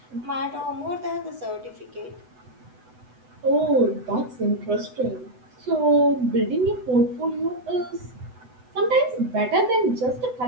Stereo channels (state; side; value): late; left; 8.0 ms